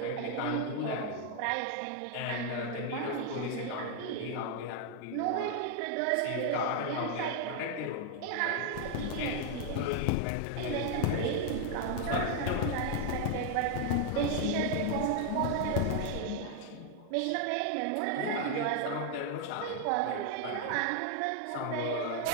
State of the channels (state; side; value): different; both; correlation 0.00